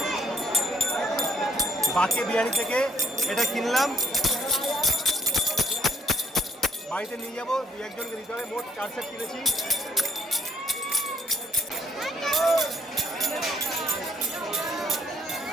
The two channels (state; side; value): normal; both; correlation 0.64